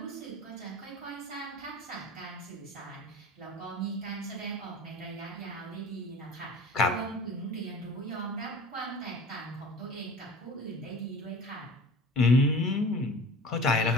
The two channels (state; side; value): normal; both; correlation 0.40